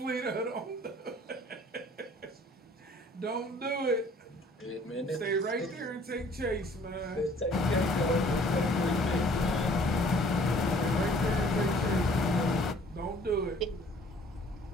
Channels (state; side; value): normal; both; correlation 0.55